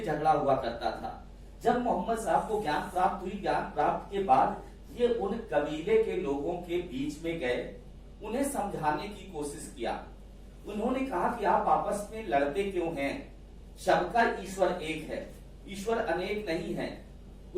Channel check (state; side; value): identical; both; correlation 1.00